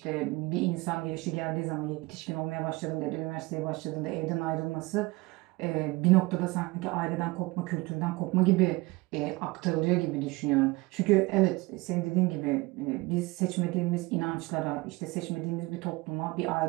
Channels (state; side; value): quieter; left; 22.6 dB